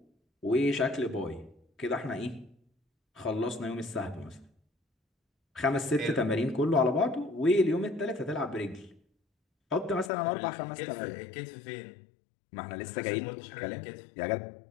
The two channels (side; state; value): right; drops out; at 10.1 s